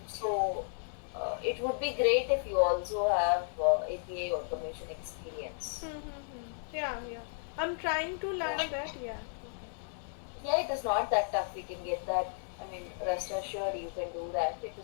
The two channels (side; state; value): right; silent; digital silence